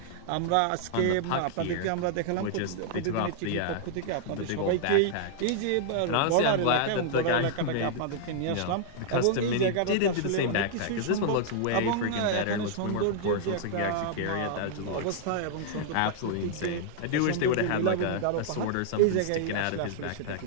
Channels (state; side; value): different; both; correlation -0.01